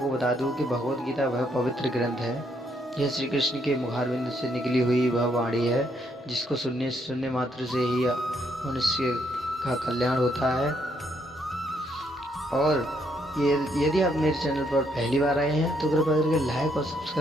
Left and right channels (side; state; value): both; normal; correlation 0.72